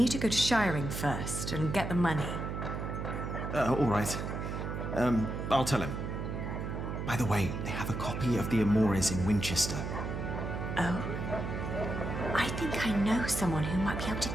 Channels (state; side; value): noise; right; hum, 4 dB below the sound